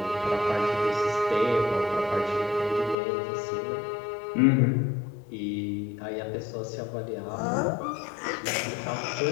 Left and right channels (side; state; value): right; drops out; at 3.0 s